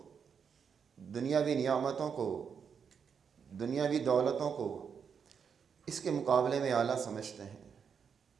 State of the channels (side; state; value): left; quieter; 6.8 dB